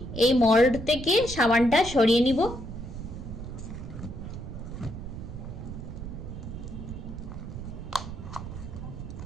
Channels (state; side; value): noise; right; rumble, 8 dB below the sound